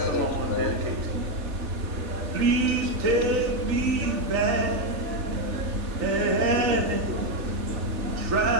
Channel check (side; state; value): left; late; 3.4 ms